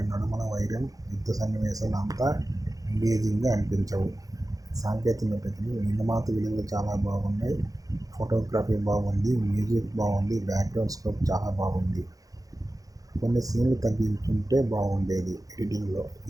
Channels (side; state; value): left; late; 0.17 ms